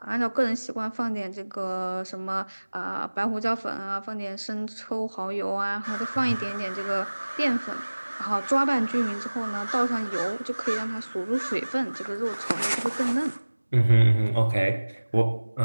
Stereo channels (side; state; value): both; inverted; correlation -1.00